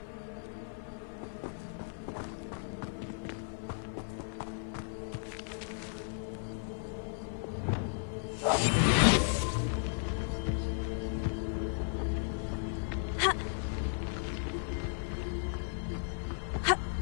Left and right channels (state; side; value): silent; right; 54 dB below the other